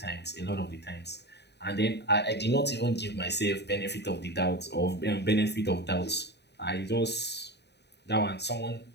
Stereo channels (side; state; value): right; late; 0.49 ms